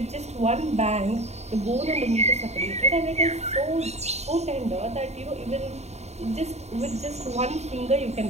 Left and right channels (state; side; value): late; left; 0.32 ms